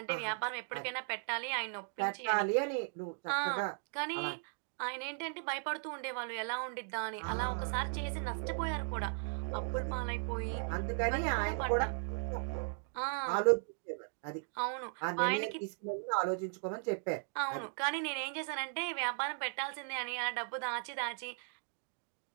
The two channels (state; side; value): silent; left; 53 dB below the other